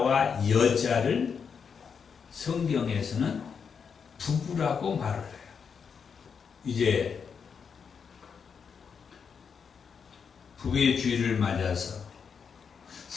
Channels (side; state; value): right; quieter; 6.4 dB